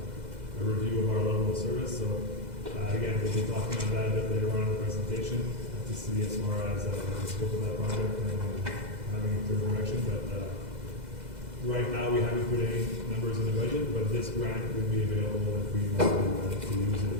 a review of our level of service. So again, we'll be talking on that a bit later on in the presentation to see as far as the scope of that project and having a clear direction. But right now, we haven't put any numbers in the budget, but this grant would be available if we want to use it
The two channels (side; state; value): left; late; 2.0 ms